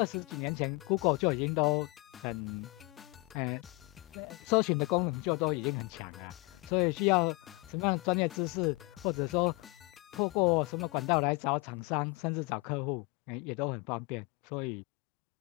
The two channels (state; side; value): quieter; right; 26.9 dB